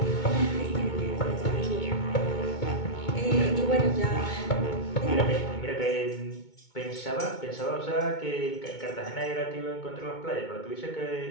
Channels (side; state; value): right; late; 2.2 ms